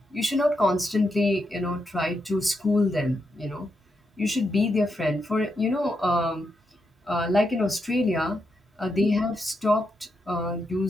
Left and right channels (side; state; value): both; normal; correlation 0.83